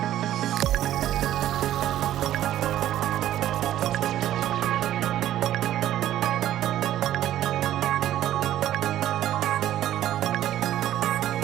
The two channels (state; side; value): quieter; left; 12.6 dB